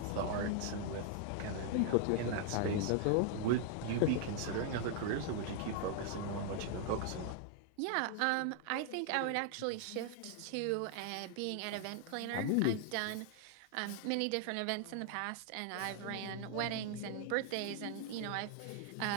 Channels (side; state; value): both; different; correlation 0.00